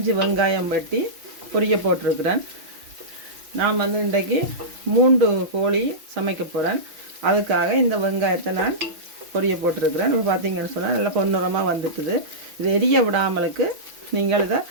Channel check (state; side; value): late; left; 5.9 ms